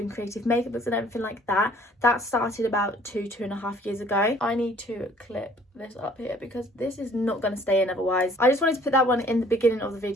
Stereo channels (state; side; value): normal; both; correlation 0.57